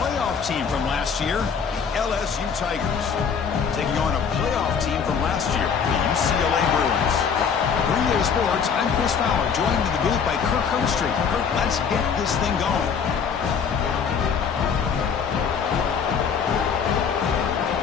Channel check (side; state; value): right; quieter; 6.6 dB